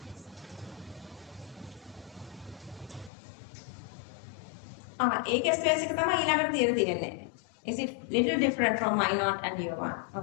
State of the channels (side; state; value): right; drops out; at 3.1 s